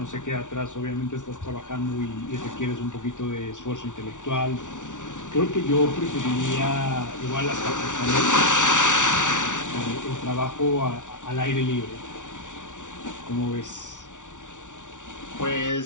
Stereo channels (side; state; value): right; late; 0.87 ms